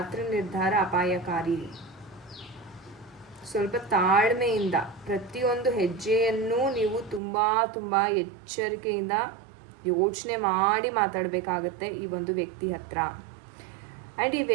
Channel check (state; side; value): drops out; left; at 7.2 s